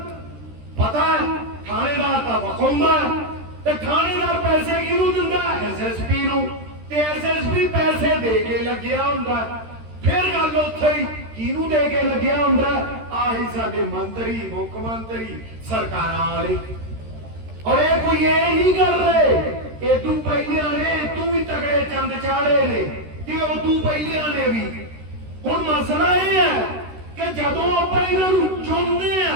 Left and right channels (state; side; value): late; left; 13 ms